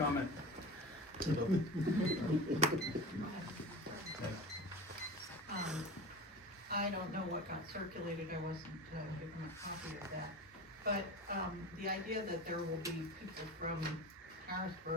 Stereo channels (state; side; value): normal; both; correlation 0.30